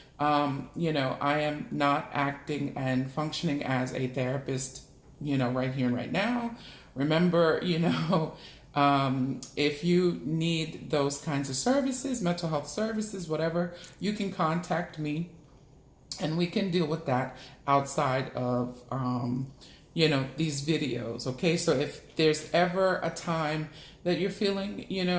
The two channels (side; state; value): both; identical; correlation 1.00